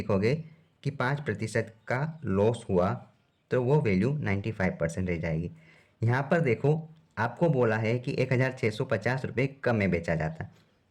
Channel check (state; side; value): identical; both; correlation 1.00